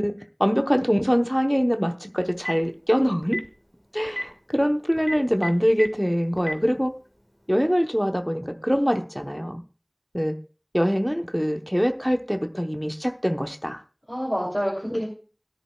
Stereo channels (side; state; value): both; identical; correlation 1.00